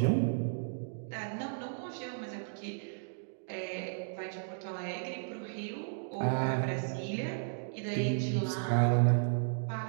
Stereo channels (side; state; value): left; silent; digital silence